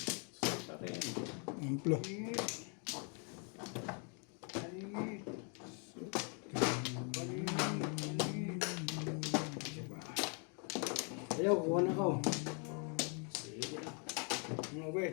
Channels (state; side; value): quieter; right; 39.1 dB